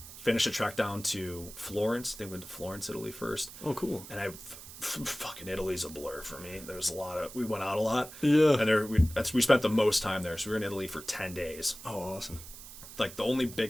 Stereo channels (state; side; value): noise; right; hiss, 15 dB below the sound